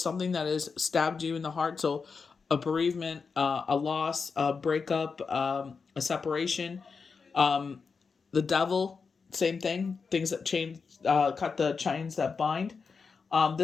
that has stabbed you in the heart. So a bereavement, a loss, a breakup, a separation, the devil, same thing. Things that change, cut the chains that bind.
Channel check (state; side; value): quieter; right; 5.2 dB